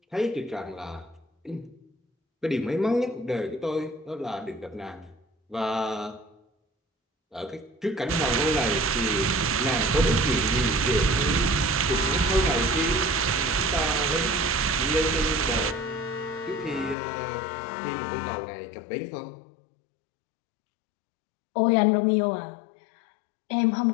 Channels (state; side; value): drops out; right; at 16.9 s